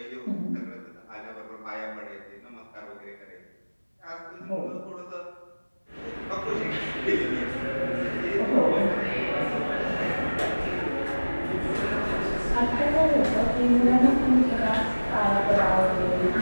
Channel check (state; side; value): inverted; both; correlation -1.00